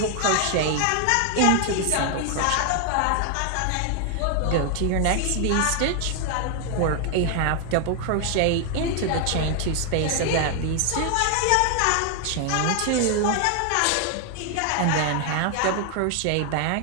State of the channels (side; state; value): both; different; correlation 0.00